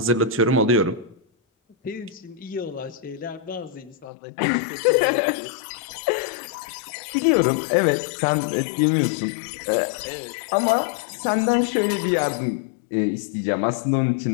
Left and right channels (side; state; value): right; drops out; at 4.1 s